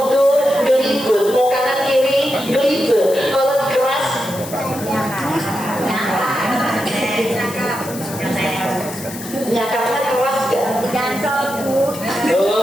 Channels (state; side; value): noise; left; hiss, 13 dB below the sound